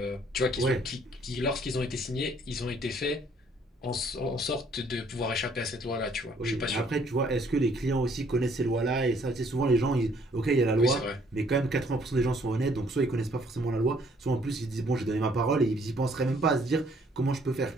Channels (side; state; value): both; normal; correlation 0.63